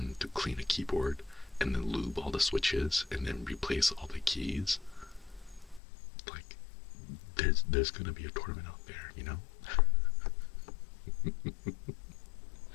to clean a keyboard and then lube all the switches and then replace all the keys. Like, there's gonna be a tournament out there, you know?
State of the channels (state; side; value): drops out; right; at 5.8 s